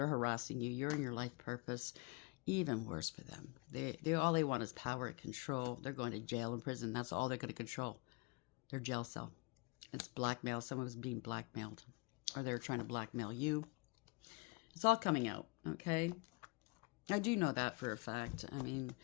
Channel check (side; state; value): right; quieter; 29.1 dB